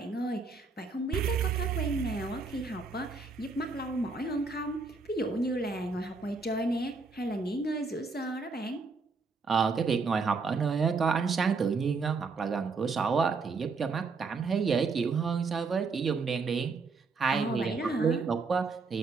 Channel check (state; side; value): quieter; left; 4.4 dB